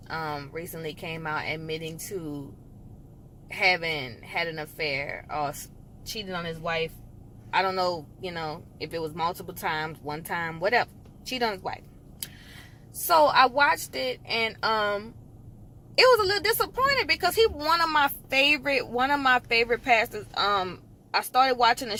recently came out admitting to having had an affair or cheated on his wife. I don't know, if it was multiple times, one time, whatever. Cheated on his wife. So I watched it and it was a little disappointed because he one of my favorite pastors. I started watching a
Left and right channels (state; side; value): identical; both; correlation 1.00